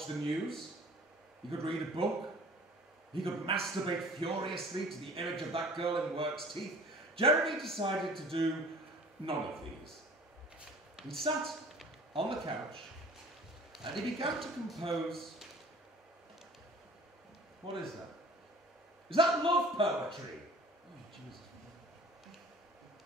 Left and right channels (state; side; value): normal; both; correlation 0.47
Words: the news. He could read a book. He could masturbate furiously to the image of that girl in work's teeth. Jeremy decided to do none of these. He sat on the couch and he began to compose. What is that? Is that love poetry? Oh, Jesus.